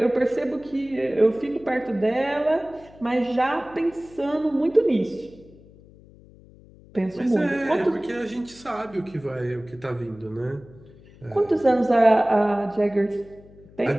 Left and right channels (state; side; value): noise; left; hum, 23 dB below the sound